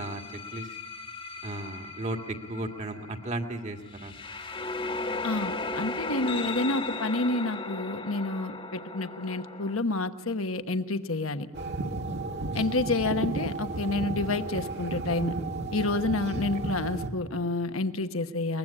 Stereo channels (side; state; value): both; normal; correlation 0.28